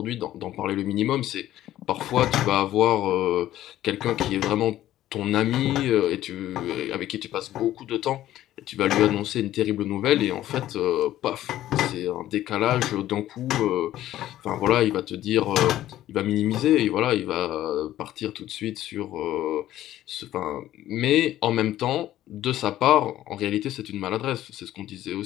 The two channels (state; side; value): quieter; right; 13.5 dB